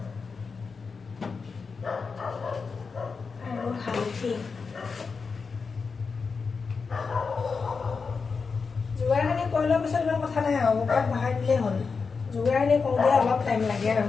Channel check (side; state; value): right; quieter; 5.0 dB